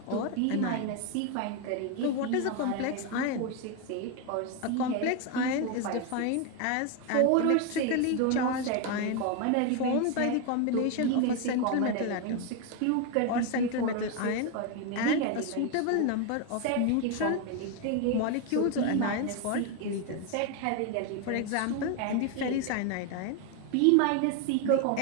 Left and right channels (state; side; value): different; both; correlation 0.02